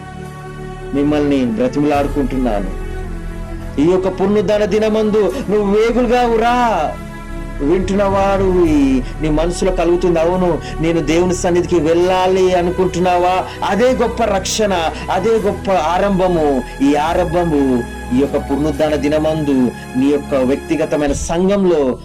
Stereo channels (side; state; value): both; identical; correlation 1.00